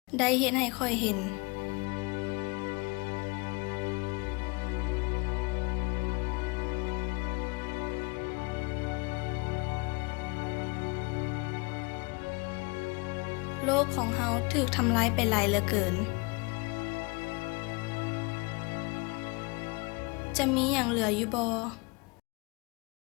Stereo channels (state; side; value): quieter; right; 28.3 dB